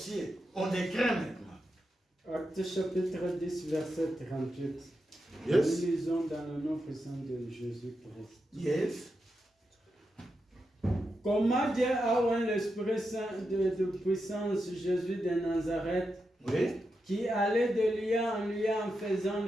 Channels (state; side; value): normal; both; correlation 0.87